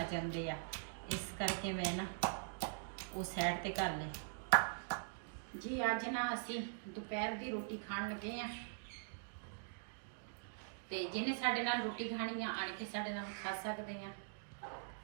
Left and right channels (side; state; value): left; silent; digital silence